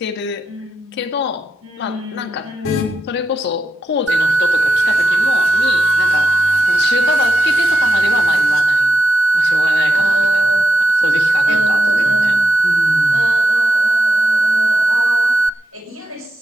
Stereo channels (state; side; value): normal; both; correlation 0.87